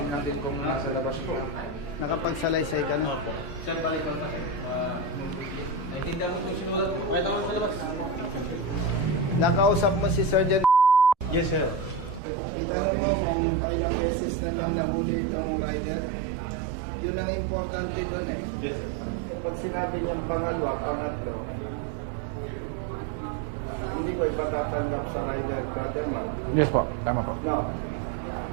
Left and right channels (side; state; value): left; drops out; at 12.2 s